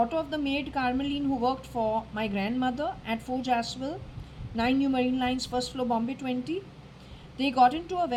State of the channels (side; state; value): both; identical; correlation 1.00